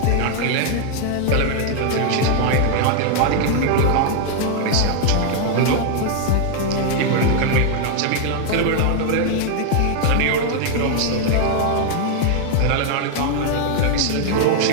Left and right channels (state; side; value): different; both; correlation 0.00